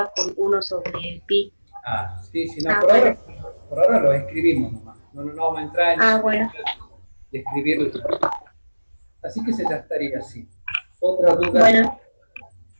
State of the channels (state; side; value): inverted; both; correlation -1.00